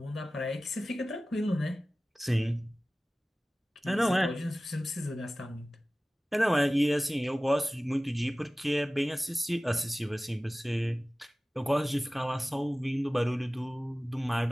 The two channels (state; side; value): normal; both; correlation 0.97